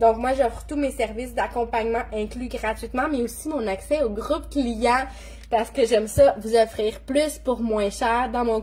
moi, j'offre tous mes services d'accompagnement inclus gratuitement, mais aussi mon accès au groupe client parce que j'aime ça, vous offrir plus pour moins cher dans mon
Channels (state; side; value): identical; both; correlation 1.00